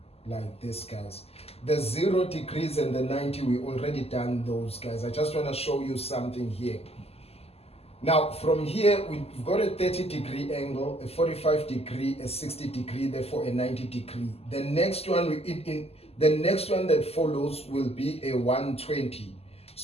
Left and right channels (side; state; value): right; late; 0.29 ms